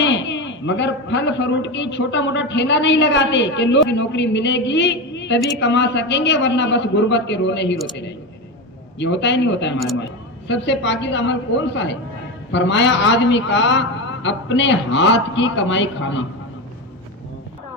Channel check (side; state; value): both; normal; correlation 0.19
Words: مگر پھل فروٹ کی چھوٹا موٹا ٹھیلا نہیں لگاتے کہ لوگ نوکری ملے گی تبھی کما سکیں گے ورنہ بس غربت کے رونے ہی روتے رہیں گے. یہ ہوتا ہی نہیں ہوتا ہے ہمارے ماں. سب سے پاکیزہ عمل کون سا ہے؟ فرمایا آدمی کا اپنے ہاتھ کی کمائی کھانا.